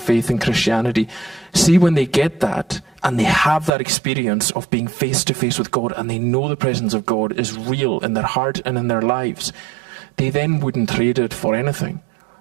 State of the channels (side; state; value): left; drops out; at 3.7 s